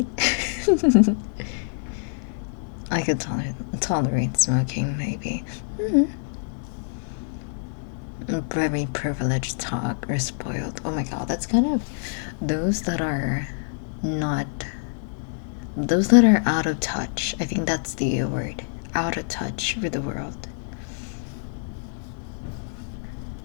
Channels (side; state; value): right; silent; digital silence